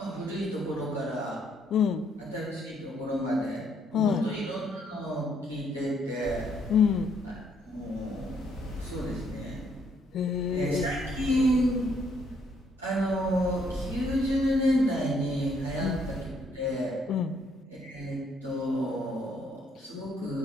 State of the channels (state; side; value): normal; both; correlation 0.69